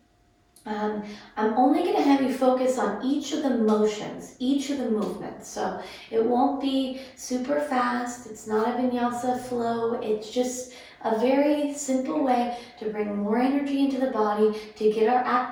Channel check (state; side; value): identical; both; correlation 1.00